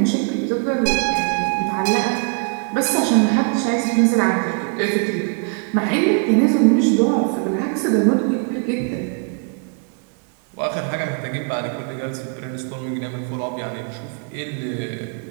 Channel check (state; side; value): quieter; left; 38.4 dB